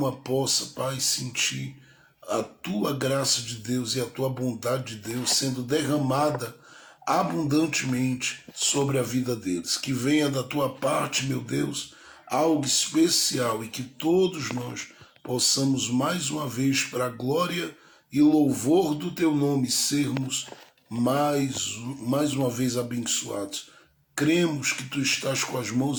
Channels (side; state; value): both; identical; correlation 1.00